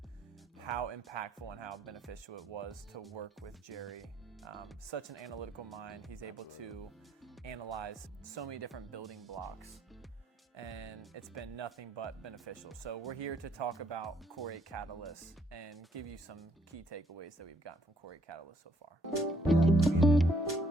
how impactful and how beneficial it was to work with Jerry. Such an analytical mind. He's able to analyze so many different building blocks, and it's been nothing but beneficial. So we're here to talk about Core8 Catalyst and give you some key takeaways that we've gotten from Core8 Catalyst so far.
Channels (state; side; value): normal; both; correlation 0.67